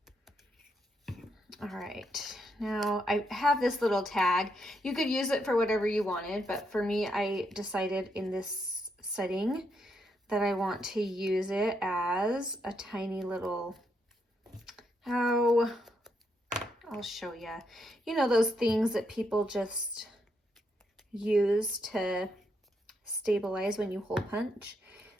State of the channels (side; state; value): both; normal; correlation 0.78